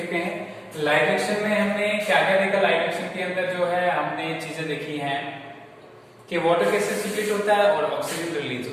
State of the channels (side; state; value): both; identical; correlation 1.00